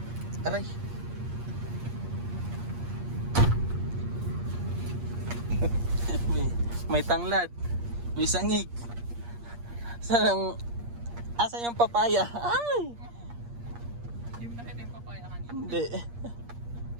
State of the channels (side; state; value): left; late; 8.5 ms